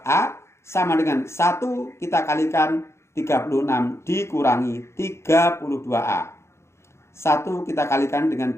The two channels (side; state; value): right; late; 0.13 ms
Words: sama dengan 1 kita kalikan 36 dikurangi 32A. 1 kita kalikan dengan